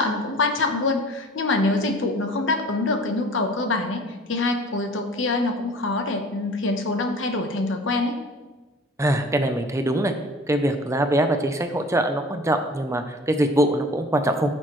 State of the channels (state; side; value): normal; both; correlation 0.45